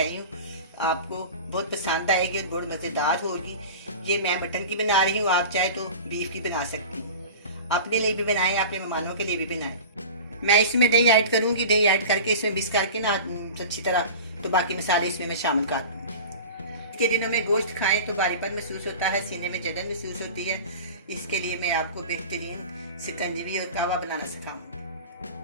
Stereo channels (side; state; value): both; inverted; correlation -0.35